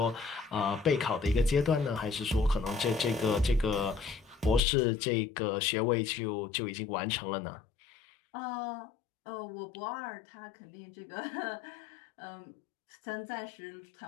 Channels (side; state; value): right; drops out; at 4.6 s